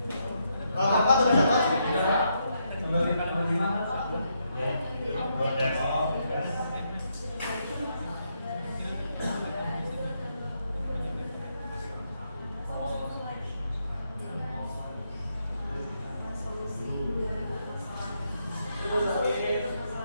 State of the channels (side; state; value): both; inverted; correlation -0.79